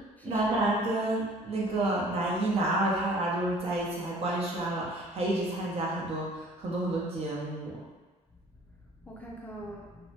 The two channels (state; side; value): normal; both; correlation 0.52